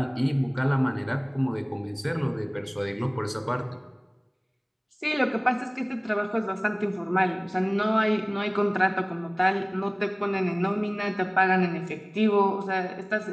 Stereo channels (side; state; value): both; identical; correlation 1.00